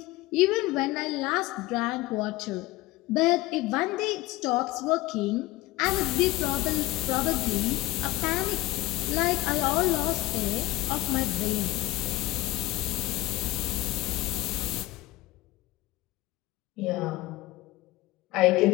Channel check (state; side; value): quieter; right; 19.1 dB